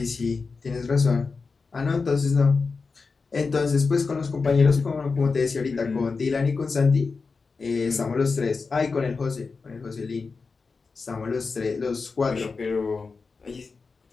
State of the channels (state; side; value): quieter; right; 4.5 dB